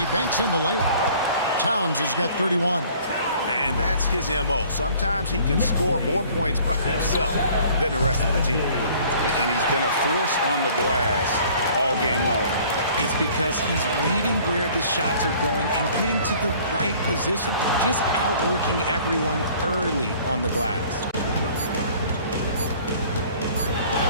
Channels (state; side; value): inverted; both; correlation -0.53